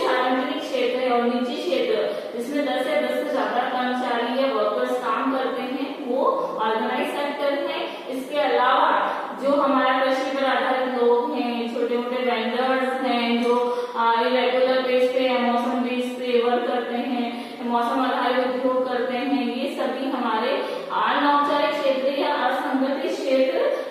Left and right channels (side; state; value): both; identical; correlation 1.00